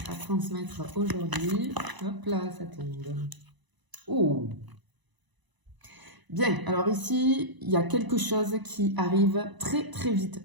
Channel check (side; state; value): left; late; 1.0 ms